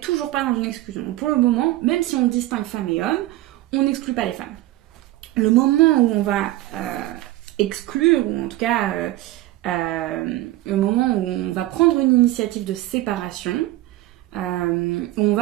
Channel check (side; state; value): left; quieter; 16.4 dB